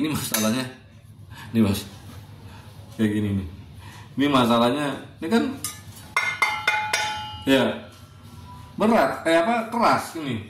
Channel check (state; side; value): identical; both; correlation 1.00